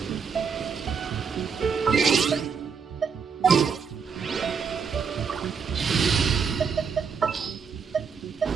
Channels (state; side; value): quieter; left; 6.1 dB